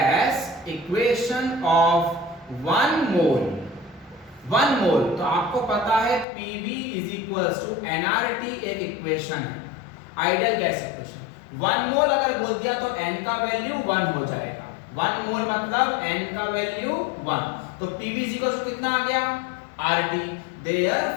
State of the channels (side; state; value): right; drops out; at 6.2 s